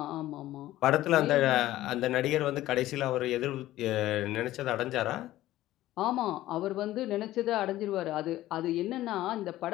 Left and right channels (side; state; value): right; quieter; 15.1 dB